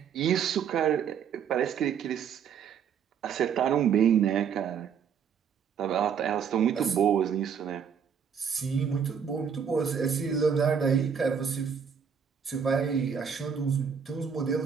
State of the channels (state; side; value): quieter; left; 7.2 dB